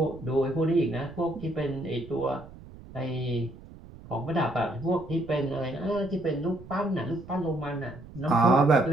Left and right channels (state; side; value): noise; right; rumble, 18 dB below the sound